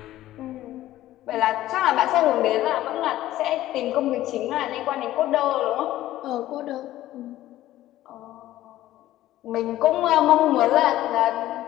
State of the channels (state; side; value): quieter; right; 14.6 dB